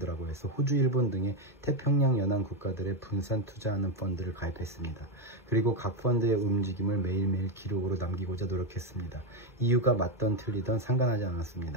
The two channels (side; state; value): both; normal; correlation 0.08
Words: 해서 호주, 일본 등의 태평양 연안 국가들의 분산 투자하는 펀드를 가입했습니다. 그리고 각 펀드의 움직임을 매일매일 기록으로 남기고자 노력했습니다. 이유가 맞던 틀리던 상관하지